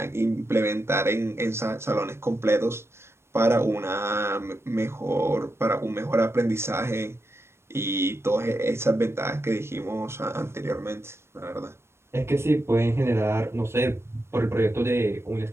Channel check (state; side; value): late; left; 0.12 ms